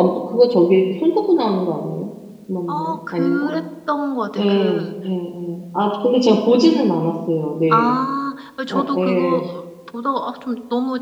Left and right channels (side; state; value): both; identical; correlation 1.00